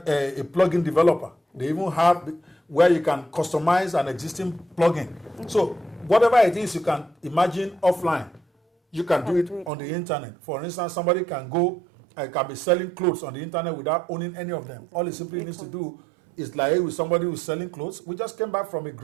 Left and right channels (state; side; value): drops out; left; at 9.7 s